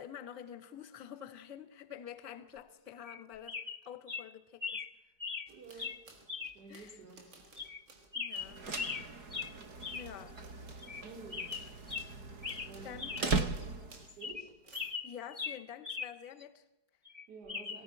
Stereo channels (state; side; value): late; left; 4.8 ms